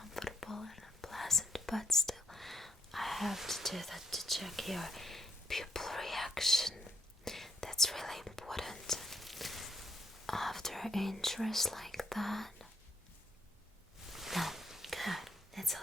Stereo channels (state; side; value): normal; both; correlation 0.76